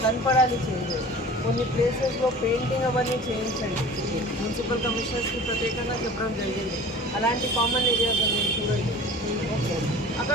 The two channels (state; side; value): normal; both; correlation 0.41